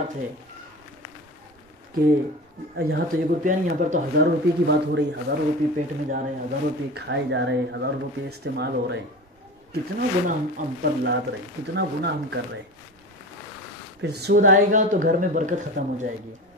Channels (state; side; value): normal; both; correlation 0.31